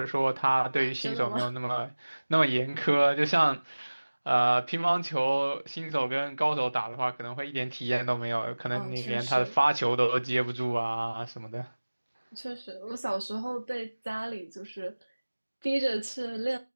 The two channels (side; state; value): both; inverted; correlation -1.00